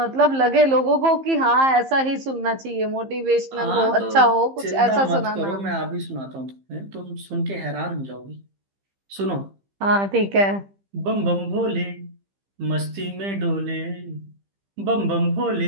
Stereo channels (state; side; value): late; left; 15 ms